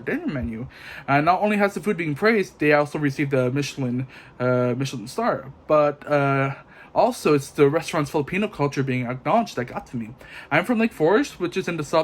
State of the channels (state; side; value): identical; both; correlation 1.00